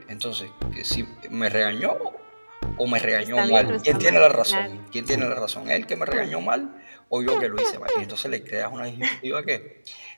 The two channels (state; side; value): inverted; both; correlation -1.00